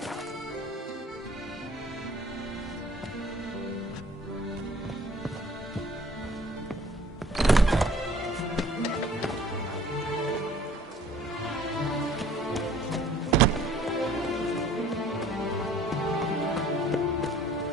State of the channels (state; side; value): normal; both; correlation 0.53